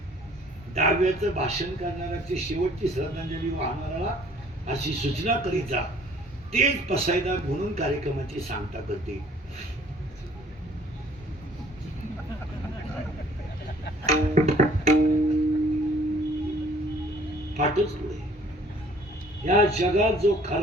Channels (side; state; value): both; normal; correlation 0.57